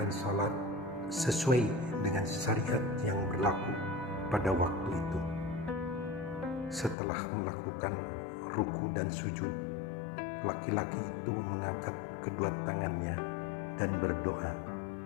salat sesuai dengan syariat yang berlaku pada waktu itu. Setelah melakukan ruku dan sujud, laki-laki itu mengangkat kedua tangannya dan berdoa.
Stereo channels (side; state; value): right; drops out; at 7.0 s